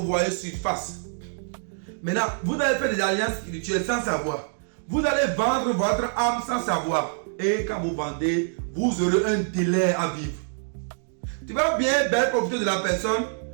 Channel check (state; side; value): silent; left; digital silence